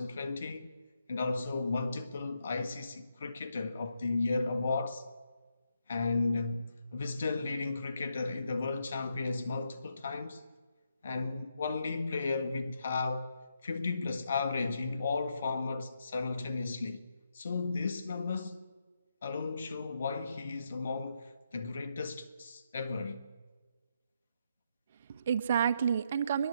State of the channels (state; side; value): inverted; both; correlation -0.80